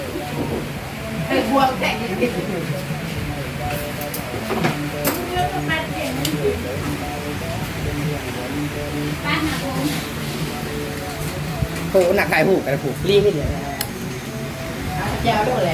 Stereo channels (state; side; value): identical; both; correlation 1.00